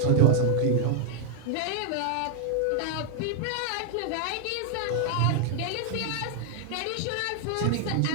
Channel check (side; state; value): both; different; correlation 0.00